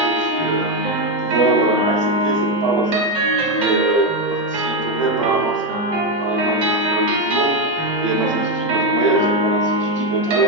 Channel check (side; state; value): both; normal; correlation 0.08